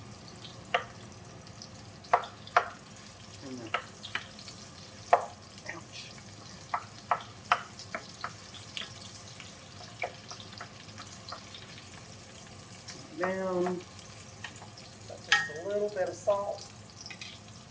Ouch. Down. That's just a little bit of salt.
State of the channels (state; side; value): identical; both; correlation 1.00